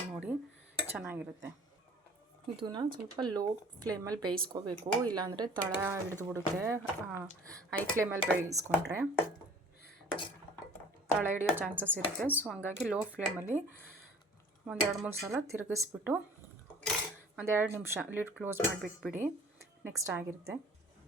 ನೋಡಿ, ಚೆನ್ನಾಗಿರುತ್ತೆ. ಇದನ್ನು ಸ್ವಲ್ಪ ಲೋ ಫ್ಲೇಮಲ್ಲಿ ಬೇಯಿಸ್ಕೋಬೇಕು, ಇಲ್ಲಾಂದರೆ ತಳ ಹಿಡಿದುಬಿಡುತ್ತೆ. ಹೈ ಫ್ಲೇಮಲ್ಲಿ ಬೇಯಿಸ್ಕೊಂಡ್ರೆ ತಳ ಹಿಡಿಯೋ ಚಾನ್ಸಸ್ ಇರುತ್ತೆ. ಸೊ ಹಂಗಾಗಿ ಲೋ ಫ್ಲೇಮಲ್ಲಿ 1-2-3 ಸಲ ತಿರುಗಿಸ್ಬಿಟ್ಟು 1-2 ನಿಮಿಷ ಲಿಡ್ ಕ್ಲೋಸ್ ಮಾಡಿಬಿಟ್ಬಿಡಿ. ನೆಕ್ಸ್ಟ್ ಆಗಿರುತ್ತೆ.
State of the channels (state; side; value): normal; both; correlation 0.49